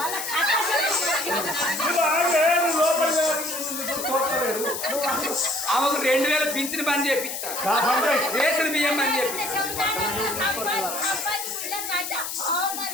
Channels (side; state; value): left; noise; hiss, 5 dB below the sound